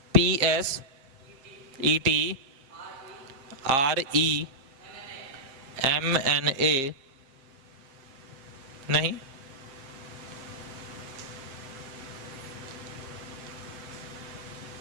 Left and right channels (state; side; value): late; left; 7.5 ms